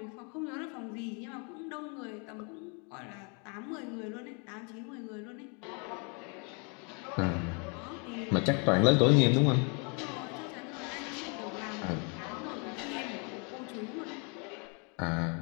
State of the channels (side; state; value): right; quieter; 35.3 dB